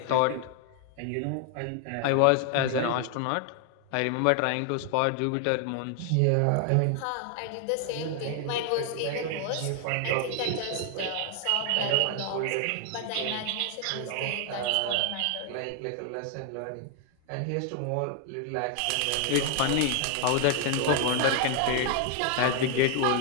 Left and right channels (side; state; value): both; different; correlation 0.00